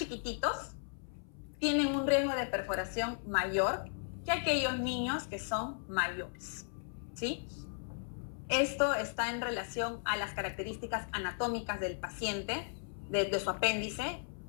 tienen un riesgo de perforación mayor que aquellos niños que son mayores, ¿sí? Esto está en relación a las características anatómicas del paciente, de su apéndice,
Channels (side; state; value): right; silent; 54 dB below the other